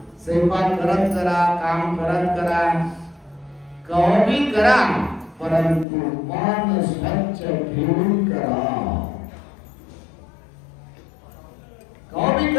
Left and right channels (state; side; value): drops out; right; at 5.9 s